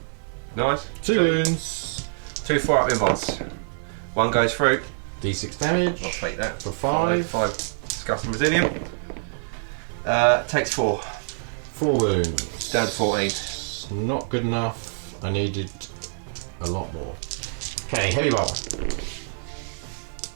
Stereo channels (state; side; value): silent; left; 55 dB below the other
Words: Nice. 2 wounds. 2 4-up invites. 1 goes through. D6 damage. I'll take that. For 5. 5 disgusting resilient. Takes 4. 4 wounds. Down to 14. Not good enough. I needed a lot more. Okay, heavy bar.